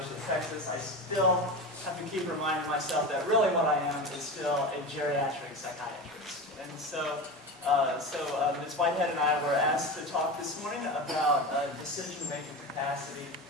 of Texas, I still have to keep reminding myself that really what I am is still a geriatric psychiatrist. And so Ms. Whitehead and I were asked to talk this morning about decision-making capacity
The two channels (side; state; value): both; normal; correlation 0.26